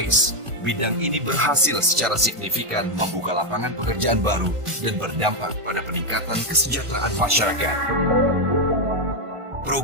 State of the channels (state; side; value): late; left; 1.5 ms